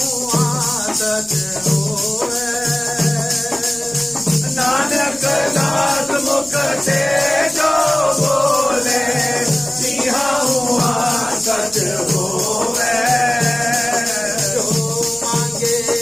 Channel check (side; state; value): right; noise; rumble, 22 dB below the sound